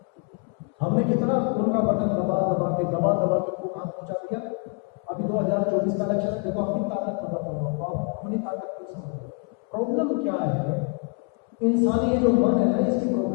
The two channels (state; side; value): quieter; right; 34.6 dB